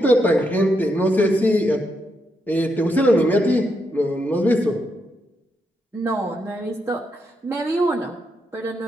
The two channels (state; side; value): normal; both; correlation 0.81